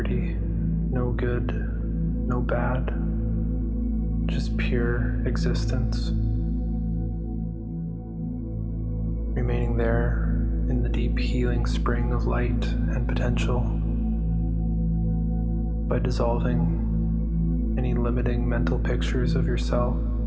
no good, no bad, just pure existence, remaining there in the deep healing spring of light and potential, by dissolving any limiting mental pictures of yourself,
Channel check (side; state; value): both; identical; correlation 1.00